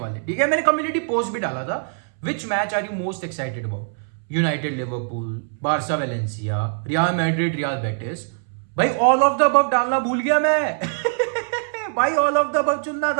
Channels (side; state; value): left; silent; 64 dB below the other